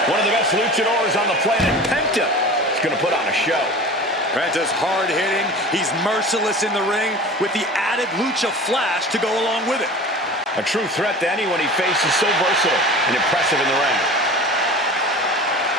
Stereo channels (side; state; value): both; normal; correlation 0.37